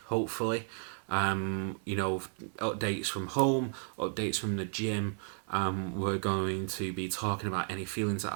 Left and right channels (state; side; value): silent; left; 56 dB below the other